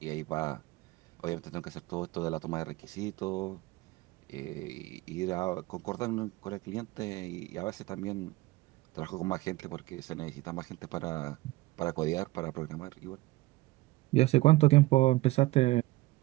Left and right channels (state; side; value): quieter; left; 19.4 dB